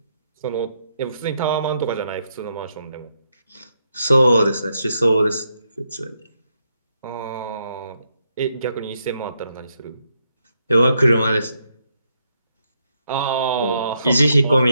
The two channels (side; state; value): both; inverted; correlation -0.79